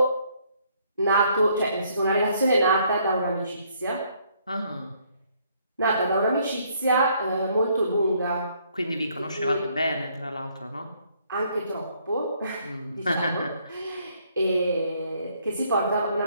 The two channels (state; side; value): inverted; both; correlation -0.67